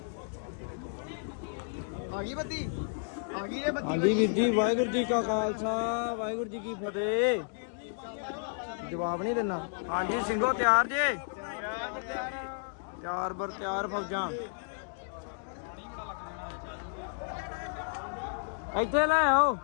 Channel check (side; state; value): right; silent; digital silence